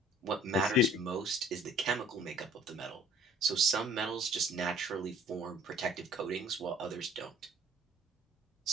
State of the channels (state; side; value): normal; both; correlation 0.53